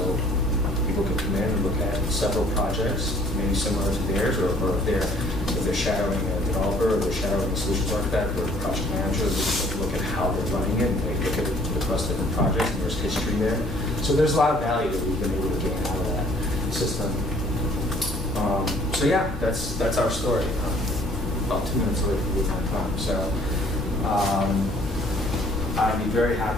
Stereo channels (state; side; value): normal; both; correlation 0.58